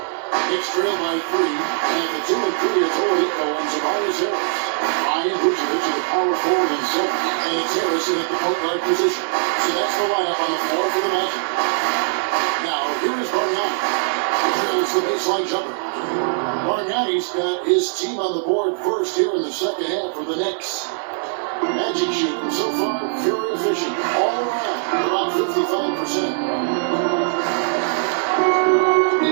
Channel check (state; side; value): silent; left; digital silence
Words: Knicks trail by 3, and at the 2 and 3, it's Oladipo and Tobias Harris. Ryan Vucevic at the power forward and 7, and it's Harrison at the point guard position. So that's the lineup on the floor for the Magic. Now, here is Bargnani. Drills the baseline jumper. Bargnani's got his team on the board first here in the second half for the Knicks. Magic shooting so far very efficient. All around, about 55%.